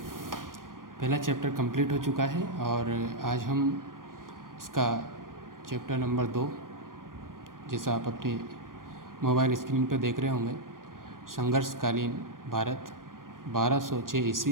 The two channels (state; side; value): late; left; 0.90 ms